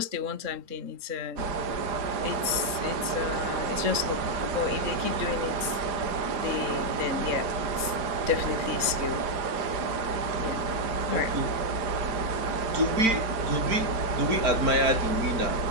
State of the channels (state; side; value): late; left; 3.8 ms